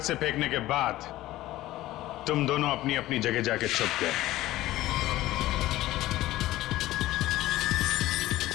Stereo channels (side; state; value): right; quieter; 16.1 dB